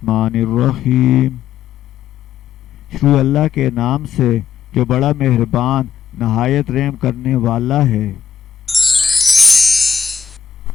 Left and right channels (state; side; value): quieter; right; 7.4 dB